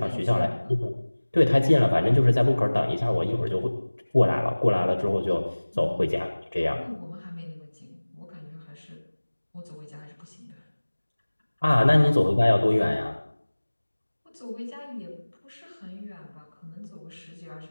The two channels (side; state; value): both; inverted; correlation -1.00